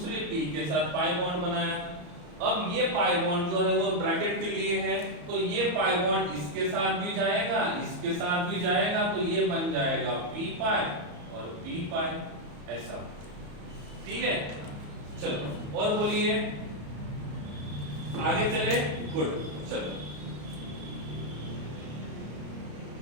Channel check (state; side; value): late; left; 34 ms